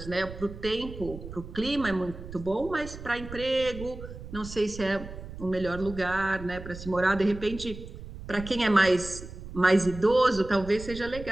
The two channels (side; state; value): right; noise; rumble, 12 dB below the sound